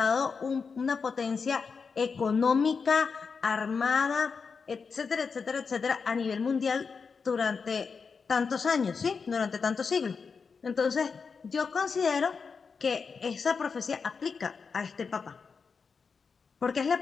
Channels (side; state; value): right; quieter; 5.3 dB